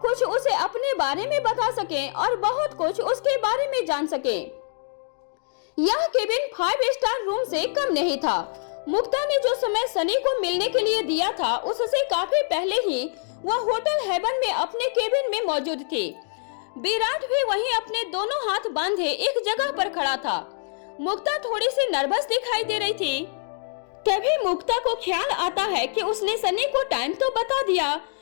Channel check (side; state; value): right; silent; digital silence